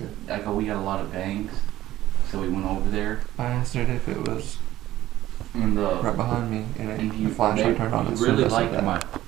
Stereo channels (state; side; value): quieter; left; 14.6 dB